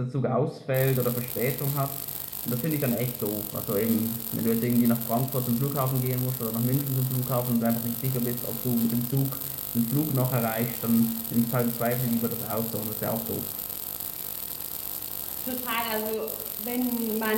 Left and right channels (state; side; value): identical; both; correlation 1.00